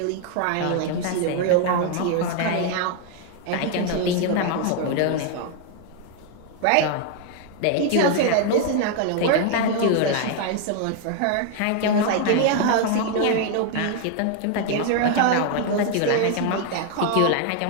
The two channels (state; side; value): different; both; correlation 0.00